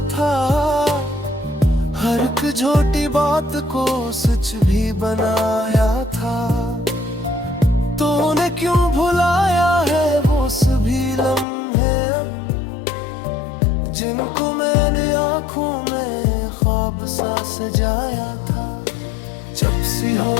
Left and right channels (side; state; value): right; drops out; at 11.5 s